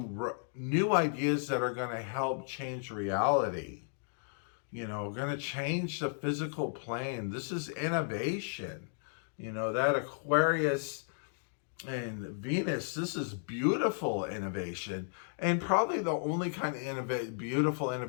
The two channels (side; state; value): right; silent; digital silence